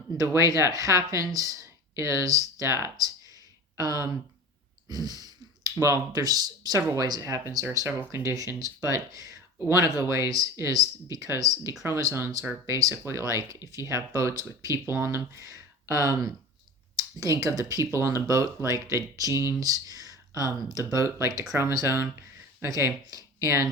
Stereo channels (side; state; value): both; normal; correlation 0.35